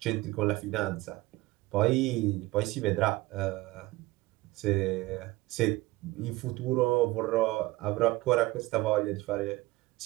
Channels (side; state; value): left; quieter; 20.1 dB